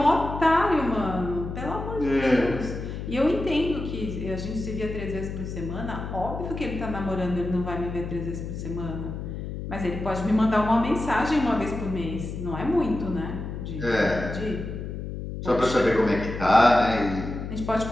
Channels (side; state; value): left; noise; hum, 7 dB below the sound